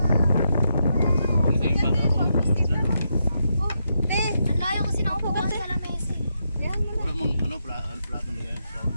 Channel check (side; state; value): both; inverted; correlation -0.82